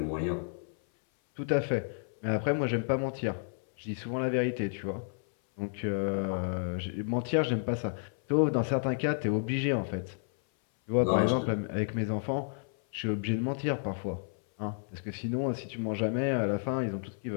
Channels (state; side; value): silent; right; 57 dB below the other